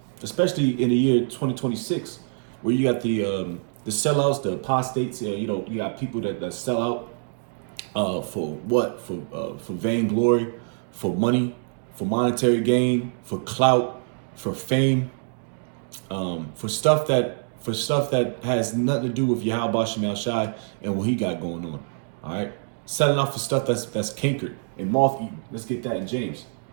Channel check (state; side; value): silent; left; digital silence